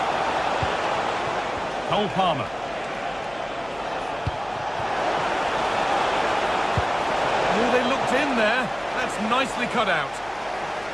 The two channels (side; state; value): left; noise; hum, 23 dB below the sound